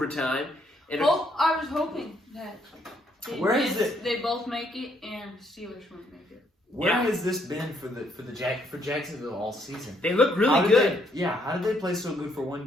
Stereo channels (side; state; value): both; normal; correlation 0.71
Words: And I was hoping that they both make it and the Steelers won't make it. Where has this been for Jacksonville all season? They look really good. How did they play so good for